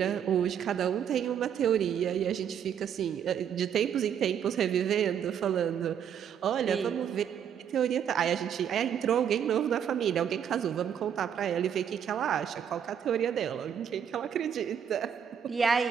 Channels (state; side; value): quieter; left; 8.5 dB